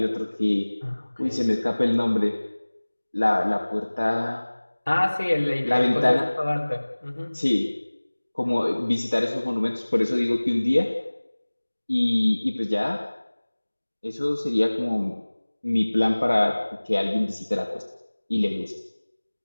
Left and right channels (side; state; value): both; inverted; correlation -1.00